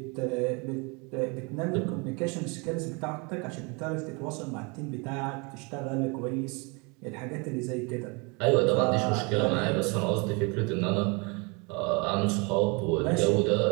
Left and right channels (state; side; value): quieter; left; 30.4 dB